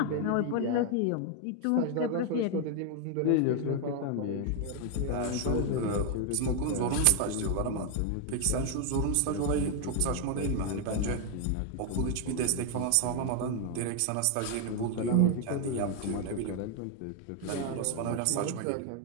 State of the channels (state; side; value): different; both; correlation 0.01